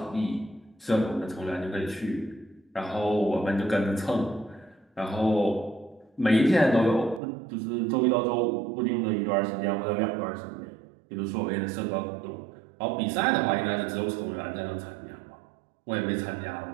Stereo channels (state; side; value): drops out; left; at 7.2 s